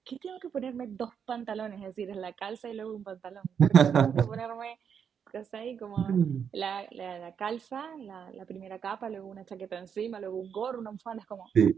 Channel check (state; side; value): quieter; left; 7.5 dB